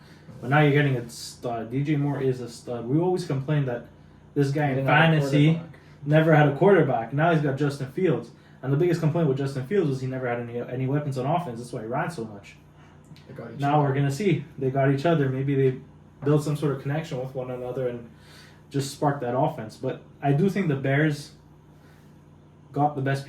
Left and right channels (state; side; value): identical; both; correlation 1.00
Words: But now you're getting a stud. DJ Moore is a stud. We always complained that this guy in fantasy never had a quarterback. Now he's got Justin Fields. And the biggest complaint with Justin Fields was he never had any weapons on offense. That's why he ran so much. Now we're going to see. They got each other. Maybe they built some sort of connection with one another and just sparked that offense. But I do think the Bears got the best